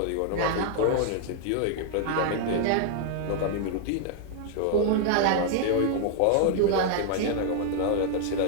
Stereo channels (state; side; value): different; both; correlation 0.00